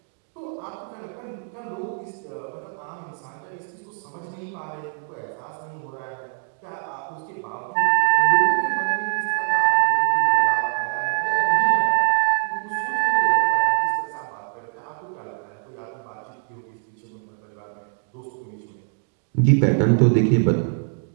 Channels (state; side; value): silent; left; 58 dB below the other